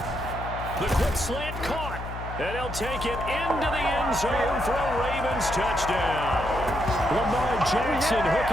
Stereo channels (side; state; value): left; noise; hum, 9 dB below the sound